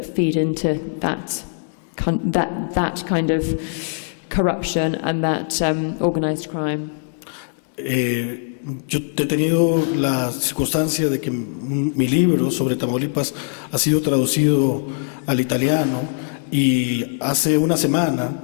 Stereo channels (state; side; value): silent; right; 61 dB below the other